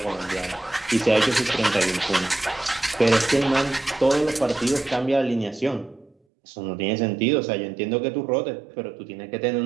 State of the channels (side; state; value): left; drops out; at 6.2 s